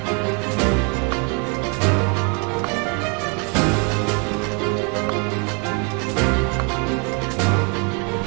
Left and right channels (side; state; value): left; quieter; 34.9 dB